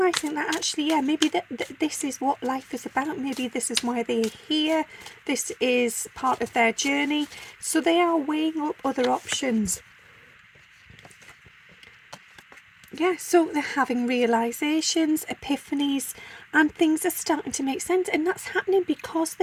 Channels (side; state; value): both; identical; correlation 1.00